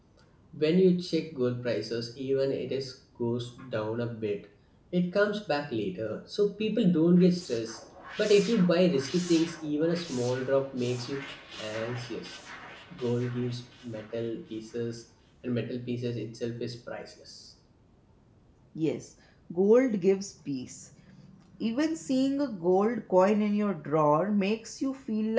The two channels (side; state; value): both; identical; correlation 1.00